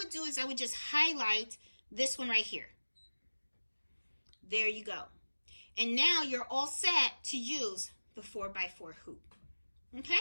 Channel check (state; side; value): inverted; both; correlation -1.00